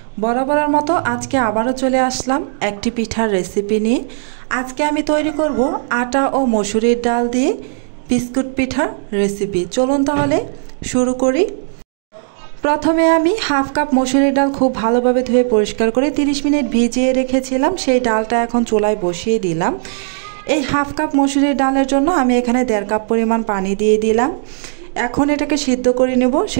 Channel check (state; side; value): silent; left; digital silence